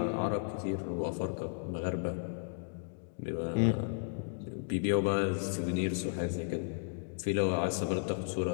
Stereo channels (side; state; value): right; silent; digital silence